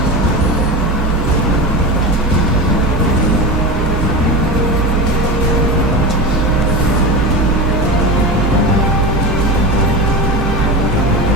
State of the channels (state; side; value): normal; both; correlation 0.25